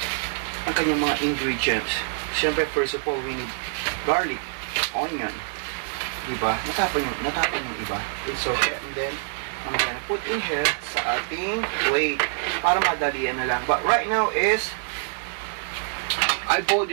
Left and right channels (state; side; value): silent; left; digital silence